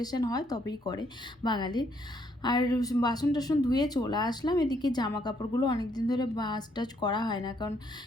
হয় তবেই করে বাঙালির। আর বাসন টাসন ধুয়ে চলে আসলাম, এদিকে জামা কাপড়গুলো অনেকদিন ধরে ভাঁজ টাজ করা হয় না, কারণ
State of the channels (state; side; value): normal; both; correlation 0.70